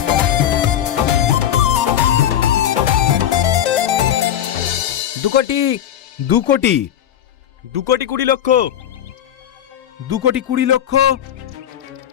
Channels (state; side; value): quieter; right; 10.5 dB